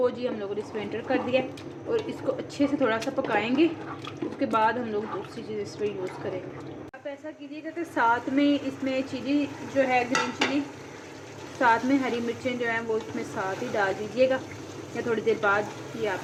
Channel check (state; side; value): identical; both; correlation 1.00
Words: जी, हम लोगों ने इसमें एंटर कर दिया और इसको अच्छे से थोड़ा सा पकाएंगे। उसके बाद हम लोग दूसरी चीज़ इस पर यूज़ करेंगे। आप ऐसा कीजिएगा कि साथ में इसमें चिली जो है, ग्रीन चिली, साथ में हरी मिर्चें जो हैं वो इसमें साथ ही डाल दीजिएगा, या थोड़ी देर बाद, ये